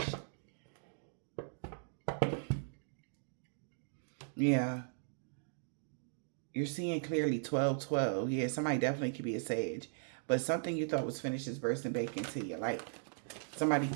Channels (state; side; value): silent; left; digital silence